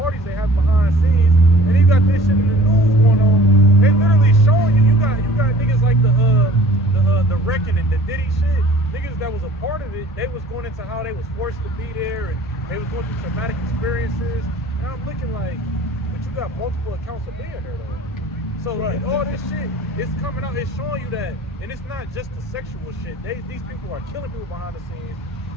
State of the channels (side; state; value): both; normal; correlation 0.49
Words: they have behind the scenes, and you got this shit in the news going on. They literally showing you. You got niggas like the Wrecking and the Diddy shit. Niggas that was a part of it. They was going into how they was forced to be there, and they was going through traumatic experiences. And I'm looking like, but you got multiple accounts of being there though. So right. All this shit is coming out. It's showing you that, and it's not just the sexual shit. These people are killing people behind the scenes.